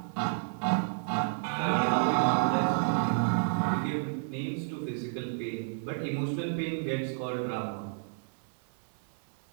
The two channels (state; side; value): silent; left; digital silence